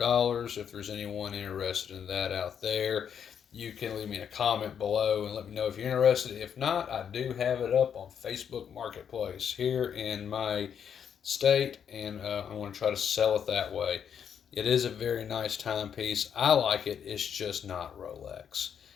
If there's anyone interested in that out there, you can leave me a comment below and let me know if you're interested. If not, I do have it up on Facebook Marketplace here in my state, and I want to try to sell it that way. It is a very nice timepiece. I like it. It's just not Rolex,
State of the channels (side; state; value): right; quieter; 8.0 dB